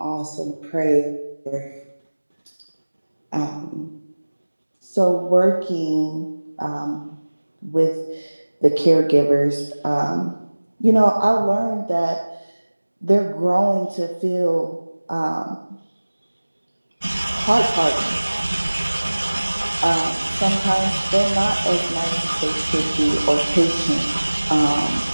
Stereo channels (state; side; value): inverted; both; correlation -1.00